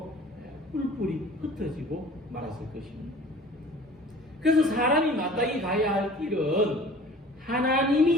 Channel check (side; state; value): both; normal; correlation 0.46